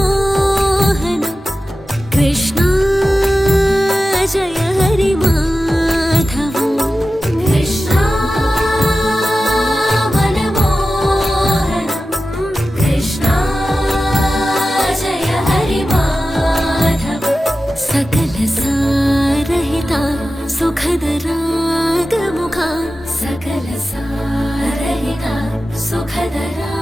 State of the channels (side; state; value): both; normal; correlation 0.94